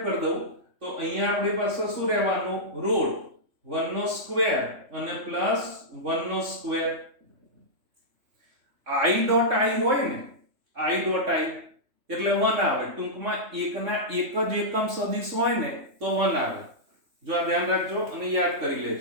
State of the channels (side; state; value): left; late; 3.6 ms